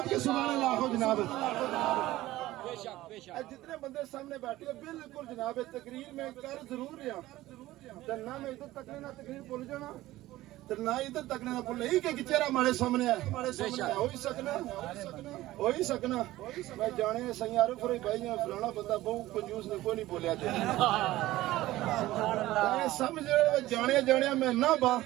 سبحان اللہ ہو جناب. بے شک بے شک. جتنے بندے سامنے بیٹھے بالکل جناب تقریر میں کر ضرور رہا نہ میں ادھر تک نہ تقریر بھول جانا نہ ادھر تک نہ بھول ہی کہ چہرہ ہمارے سامنے ہے. ہو ہی سکنا میں جانے سی عارف ہوئی بھائی فلانا بندہ بہت کنجوس نے کوئی نہیں بولیا سمجھ جانے میں نہ با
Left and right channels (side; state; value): left; quieter; 16.5 dB